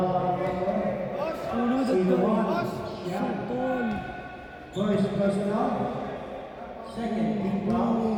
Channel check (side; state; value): both; identical; correlation 1.00